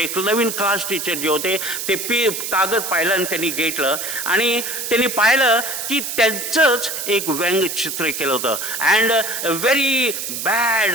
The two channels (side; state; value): right; noise; hiss, 5 dB below the sound